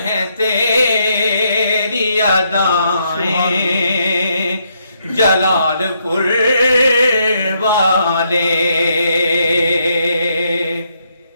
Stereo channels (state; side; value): inverted; both; correlation -0.75